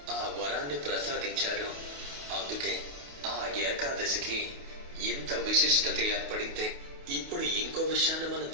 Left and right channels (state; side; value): late; left; 28 ms